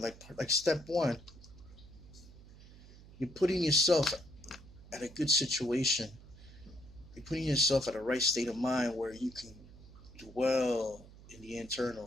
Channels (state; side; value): noise; right; hum, 20 dB below the sound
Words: step one, you're putting yourself at a good situation. You're putting yourself at a right state of mind where you can dwell in the